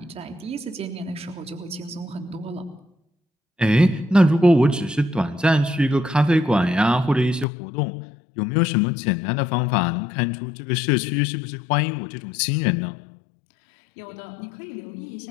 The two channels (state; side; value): drops out; right; at 7.5 s